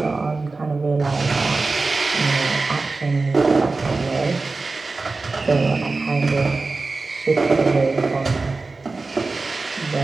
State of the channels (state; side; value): quieter; left; 3.7 dB